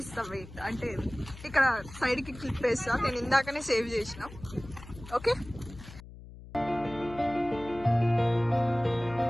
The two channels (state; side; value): noise; left; hum, 16 dB below the sound